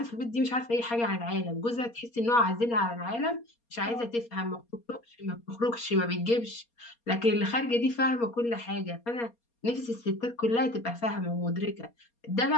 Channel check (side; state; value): right; late; 4.3 ms